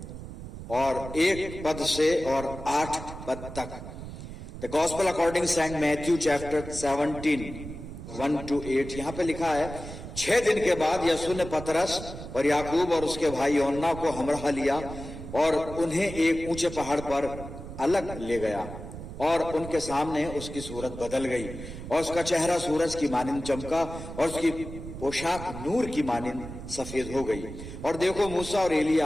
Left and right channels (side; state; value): right; noise; rumble, 11 dB below the sound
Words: और 1 पद से और 8 पद तक। The gospel according Saint Matthew chapter 17 1 to 8। यहां पे लिखा है, 6 दिन के बाद यीशु ने पतरस और याकूब और उसके भाई यूहन्ना को हमराह लिया और उन्हें एक ऊंचे पहाड़ पर अलग ले गया और उनके सामने उसकी सूरत बदल गई और उसका चेहरा सूरज की मानिंद चमका और उसकी पोशाक नूर की मानिंद सफेद हो गई। और देखो, मूसा और